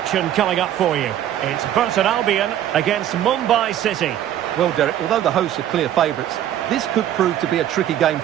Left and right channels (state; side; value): quieter; left; 11.4 dB